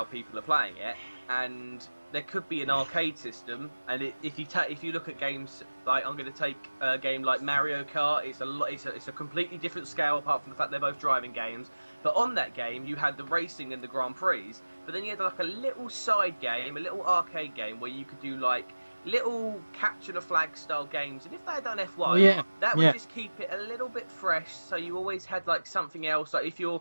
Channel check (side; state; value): both; inverted; correlation -1.00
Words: people are playing it, and there could be an arcade system. And if you look at games like, I'm going to take a game like Mario Kart, it's a completely different scale apart from the fact they're both driving games. But on that game, you had the racing and the Grand Prix, but then you had like a little side game, a little arcade game where you could do like little capture the flag style games. And if they had done F1, that would just keep it a little bit fresh. So you always had like something else. Like if